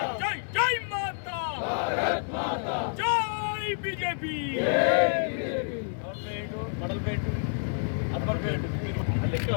జై జై మాతా, జై బీజేపీ.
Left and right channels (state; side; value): silent; right; digital silence